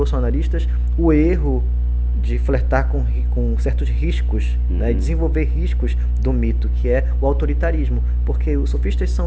o erro de flertar com certos riscos, né, desenvolver riscos do mito, que é o autoritarismo, porque os sofistas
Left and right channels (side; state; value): both; identical; correlation 1.00